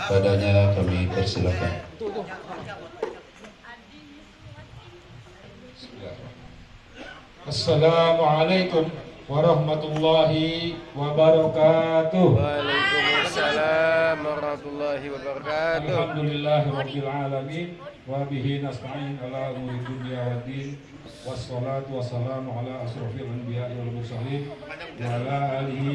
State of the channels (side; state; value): both; identical; correlation 1.00